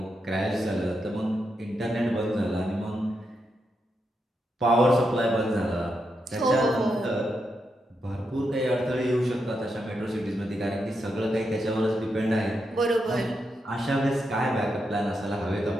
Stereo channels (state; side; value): normal; both; correlation 0.84